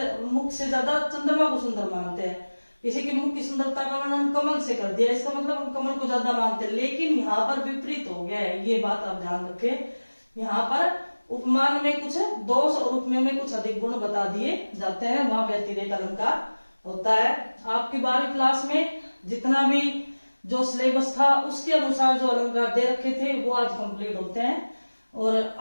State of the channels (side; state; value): both; inverted; correlation -1.00